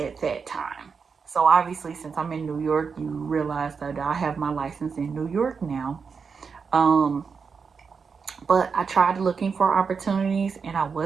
that time. So obviously, since I'm in New York, you realize that I have my license in New York now. But I tried looking for opportunities and I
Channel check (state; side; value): quieter; left; 5.6 dB